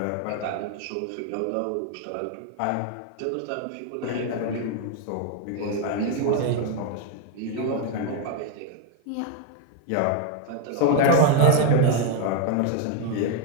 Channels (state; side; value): different; both; correlation 0.01